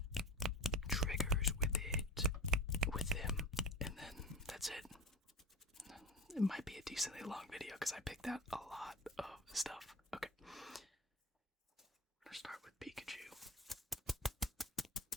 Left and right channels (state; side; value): normal; both; correlation 0.34